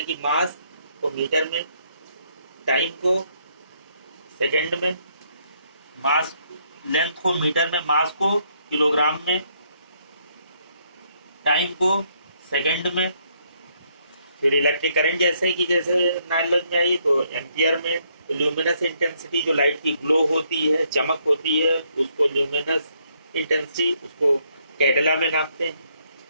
कि मास को मीटर में, टाइम को सेकंड में, मास लेंथ को मीटर में, मास को किलोग्राम में, टाइम को सेकंड में। फिर इलेक्ट्रिक करंट जैसे कि जैसे नॉलेज में आई, तो एम्पियर में। ल्यूमिनस इंटेंसिटी जो लाइट की ग्लो होती है, चमक होती है, उसको ल्यूमिनस इंटेंसिटी, उसको कैडेला में नापते हैं।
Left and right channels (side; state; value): both; inverted; correlation -0.72